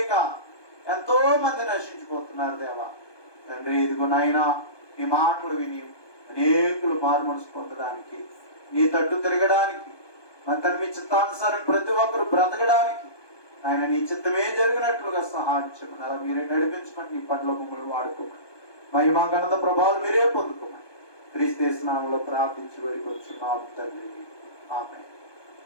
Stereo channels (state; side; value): late; right; 1.2 ms